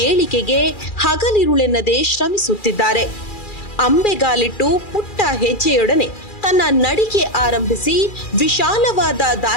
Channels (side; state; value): right; late; 2.4 ms